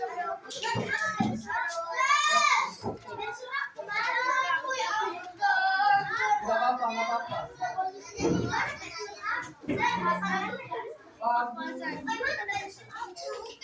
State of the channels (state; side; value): identical; both; correlation 1.00